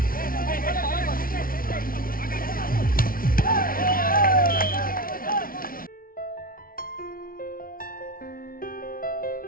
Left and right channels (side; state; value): right; late; 0.42 ms